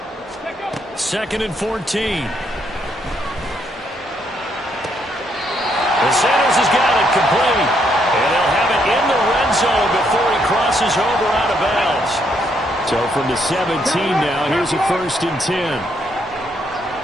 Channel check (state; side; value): normal; both; correlation 0.74